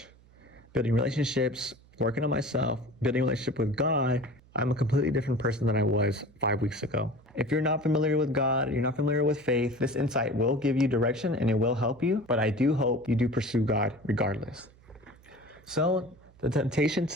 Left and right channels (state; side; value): noise; right; hum, 27 dB below the sound